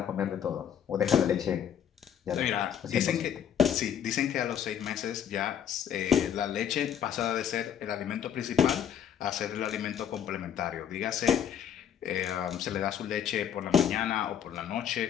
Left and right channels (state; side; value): quieter; right; 9.0 dB